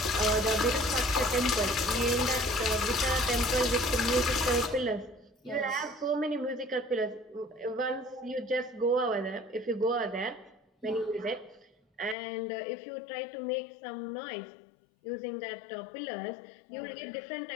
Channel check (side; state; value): right; drops out; at 12.2 s